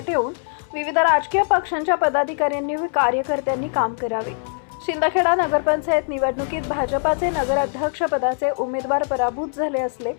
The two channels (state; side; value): silent; right; 64 dB below the other